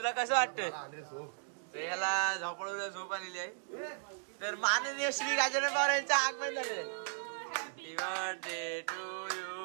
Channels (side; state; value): left; silent; digital silence